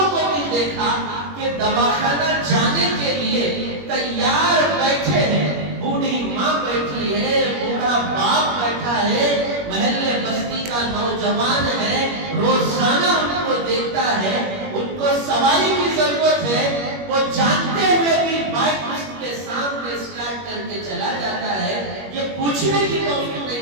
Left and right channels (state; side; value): late; left; 21 ms